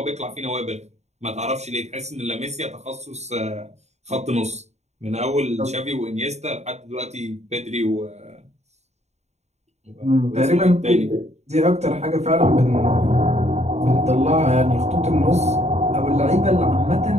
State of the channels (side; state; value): left; late; 0.32 ms